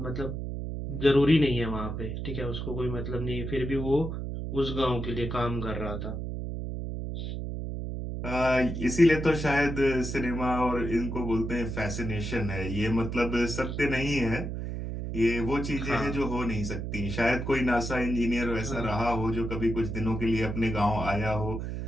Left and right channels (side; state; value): right; noise; hum, 5 dB below the sound